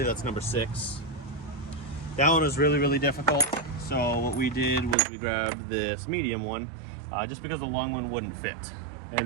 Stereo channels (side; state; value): left; drops out; at 5.0 s